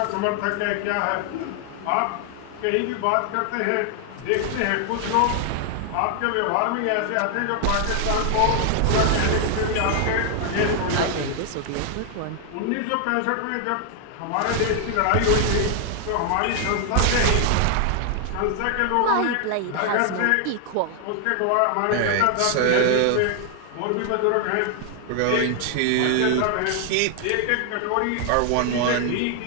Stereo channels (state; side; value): different; both; correlation 0.00